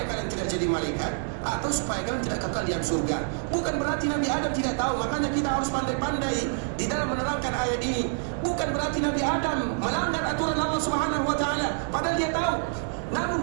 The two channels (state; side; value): silent; left; 58 dB below the other